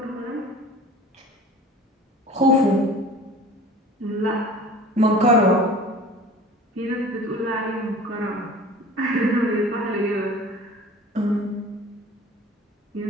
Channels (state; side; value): normal; both; correlation 0.43